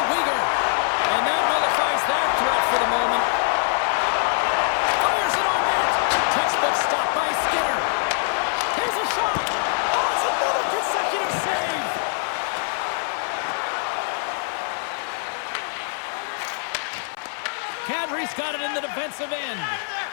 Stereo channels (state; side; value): silent; right; 57 dB below the other